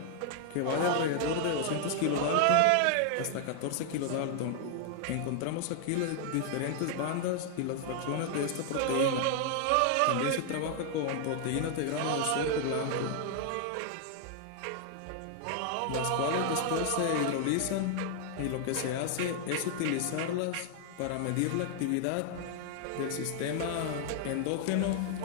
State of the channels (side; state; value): both; different; correlation 0.00